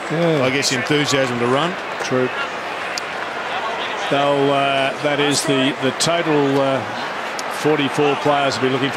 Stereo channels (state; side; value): identical; both; correlation 1.00